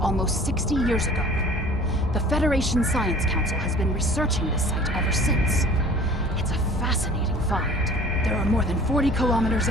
60 years ago. The Federation Science Council has been researching this site ever since. It's a fascinating find. There are more than 40 kilometers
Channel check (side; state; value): both; normal; correlation 0.47